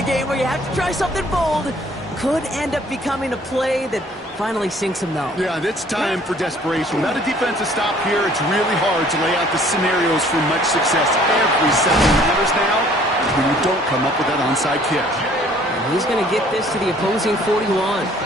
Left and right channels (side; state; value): both; normal; correlation 0.57